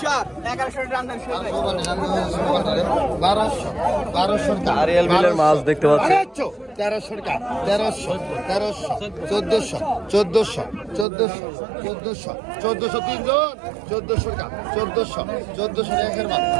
1100 রান্দান শুরু 1200 টাকা আরিয়াল বিলের মাছ দেখতে পাচ্ছি 1300 টাকা 1300 1400 তিনজন 1400 টাকা 1400 একের মাছ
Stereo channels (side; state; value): left; drops out; at 11.1 s